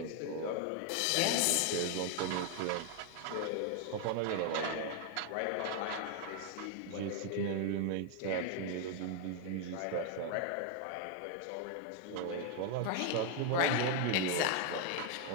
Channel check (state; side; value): different; both; correlation 0.00